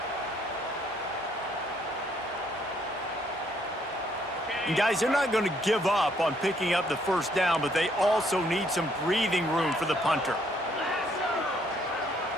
And guys, they're not going to give up on picking up the 1st down, but they also need some breathing room for the punter.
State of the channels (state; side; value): normal; both; correlation 0.68